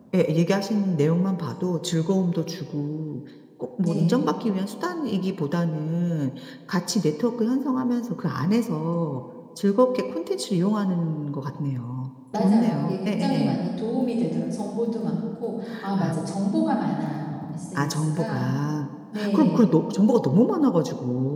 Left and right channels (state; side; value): identical; both; correlation 1.00